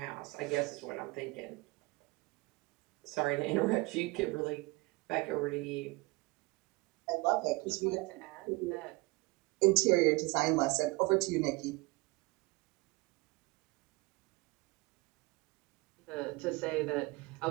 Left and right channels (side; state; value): left; quieter; 23.8 dB